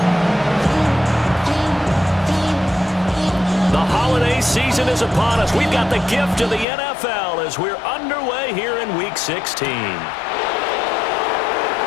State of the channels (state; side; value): drops out; right; at 6.7 s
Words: The holiday season is upon us. We've got the gift of the NFL as we're underway here in Week 16.